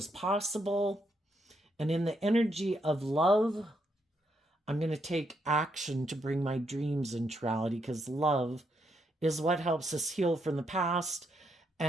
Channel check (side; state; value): both; normal; correlation 0.78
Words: possible. And in the energy of love, I'm going to take action to bring my dreams into reality, because love is what helps us heal from the past